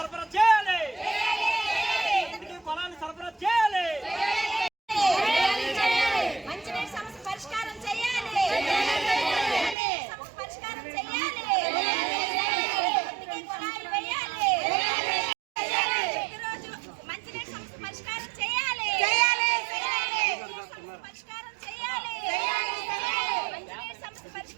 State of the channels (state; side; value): drops out; left; at 9.8 s